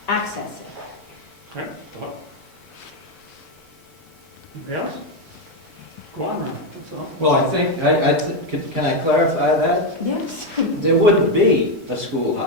access it. Okay. Anybody else? Go on, Ron. That's all. Well, I think, can I clarify that? Yes. There wouldn't be a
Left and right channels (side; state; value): both; normal; correlation 0.06